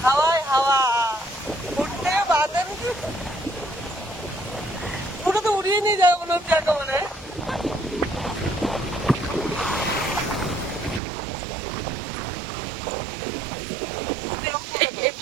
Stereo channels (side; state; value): left; drops out; at 11.0 s